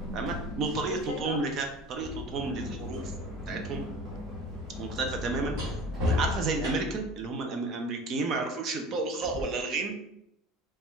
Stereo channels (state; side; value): normal; both; correlation 0.39